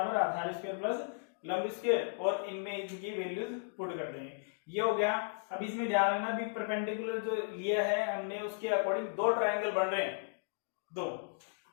आधार स्क्वायर प्लस लंब स्क्वायर, और इनमें इनकी वैल्यूज पुट कर देंगे, ये हो गया। अब इसमें ध्यान रखना भी परपेंडिकुलर जो लिया है हमने उसके अकॉर्डिंग दो ट्राइंगल बन रहे हैं, दो,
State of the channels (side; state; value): right; silent; digital silence